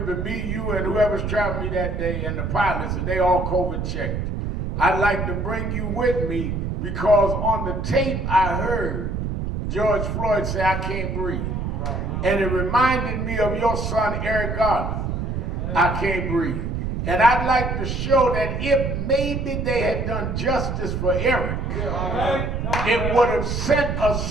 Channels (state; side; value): noise; right; rumble, 2 dB below the sound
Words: but me, you, and whoever's traveling me that day, and the pilots, and they all COVID checked. I'd like to bring you with me because on the tape I heard George Floyd say, I can't breathe. And it reminded me of your son, Eric Garner. I can't breathe. And I'd like to show that if maybe they had done justice for Eric, it would have sent a